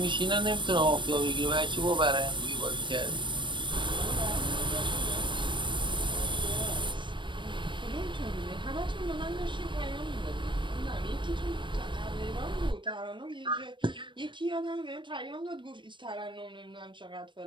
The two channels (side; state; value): left; late; 0.23 ms